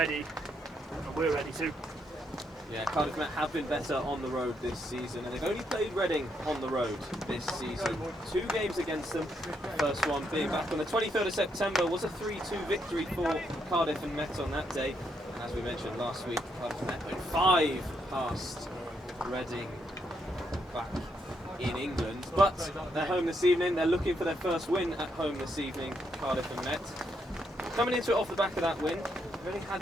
and we're ready too. Yeah, Cardiff Met have been better on the road this season, and they've only played Reading on the road this season. 2 games against them. First one being back on the 23rd of September was a 3-2 victory for Cardiff and Met on that day. And as we mentioned last week, Cardiff and Met went 5 past Reading back in England. But they're home this evening. They're looking for their first win at home this evening, Cardiff and Met. Coming into it off the back of that win, they've only had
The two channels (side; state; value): both; normal; correlation 0.77